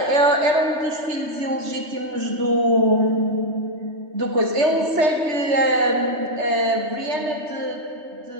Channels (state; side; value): late; left; 3.2 ms